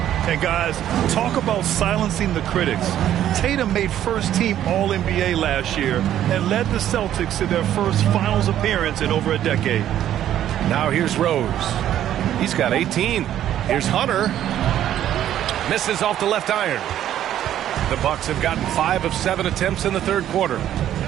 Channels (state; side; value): quieter; left; 11.5 dB